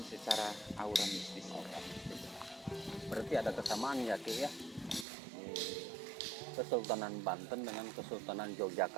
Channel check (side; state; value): left; drops out; at 5.1 s